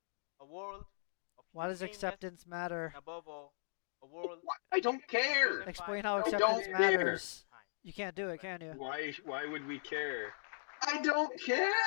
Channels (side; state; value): right; silent; digital silence